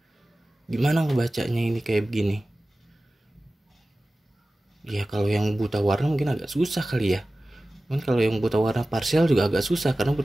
Gimana ngebacanya ini kayak begini? Ya kalau yang buta warna mungkin agak susah kali ya. Cuman kalau yang buta warna parsial juga agak susah, karena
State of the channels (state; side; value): normal; both; correlation 0.96